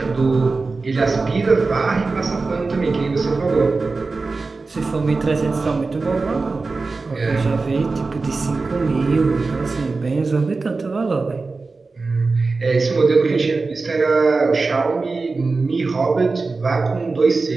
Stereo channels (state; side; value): quieter; left; 3.9 dB